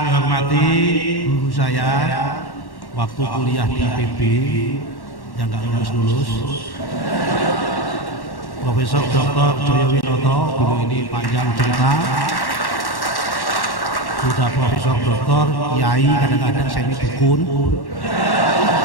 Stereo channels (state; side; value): late; right; 1.1 ms